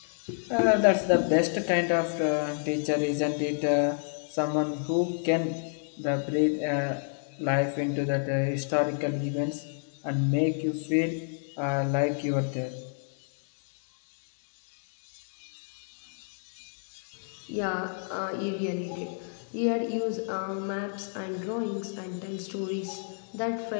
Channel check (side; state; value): right; silent; digital silence